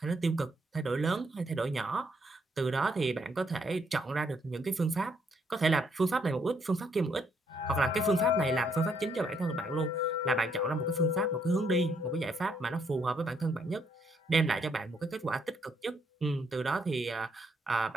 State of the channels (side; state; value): both; normal; correlation 0.72